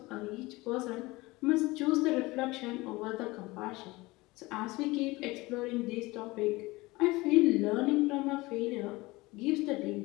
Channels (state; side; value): quieter; right; 21.5 dB